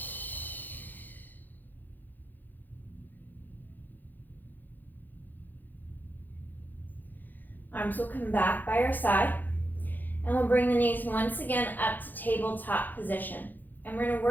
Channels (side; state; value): right; late; 0.086 ms